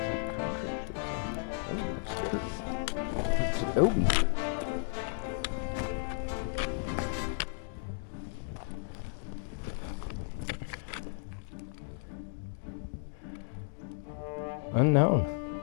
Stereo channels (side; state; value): right; silent; digital silence